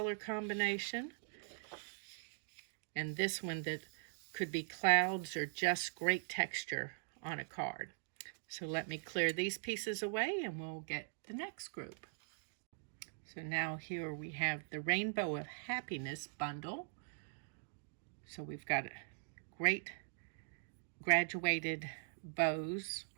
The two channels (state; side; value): silent; left; digital silence